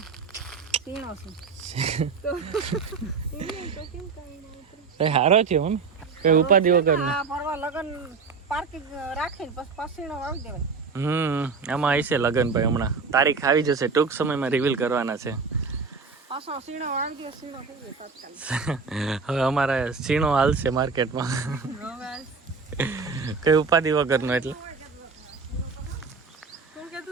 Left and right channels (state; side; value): quieter; left; 4.9 dB